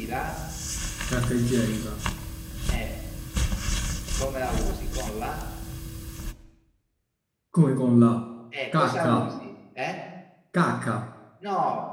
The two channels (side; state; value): both; identical; correlation 1.00